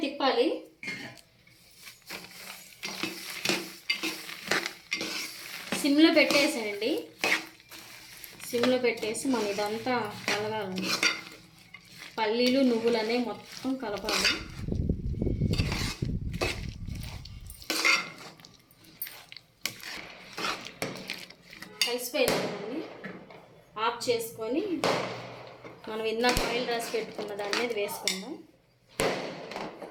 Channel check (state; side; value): identical; both; correlation 1.00